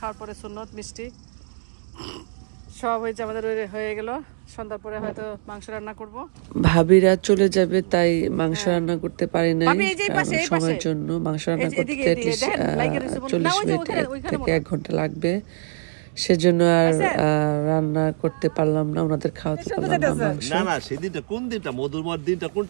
পরে সুন্নত মিষ্টি সব হয়েছে আমাদের, হয়ে গেল। সন্ধ্যার পরে হয়তো মাংস রান্না করব। ভাবিরা চলে যাবে তাই মাংস রান্না করতে পারি নাই, সময়ের জন্য মাংস রান্না করতে 40 মিনিট থেকে 1 ঘন্টা লাগবে, সেজন্য আর রান্না করতে পারলাম না, ওনাদের খাওয়াতে পারলাম না মাংস। না না, সেদিনটা কোন দিনটা, মধুরময় দিনটা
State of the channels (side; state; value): left; silent; 63 dB below the other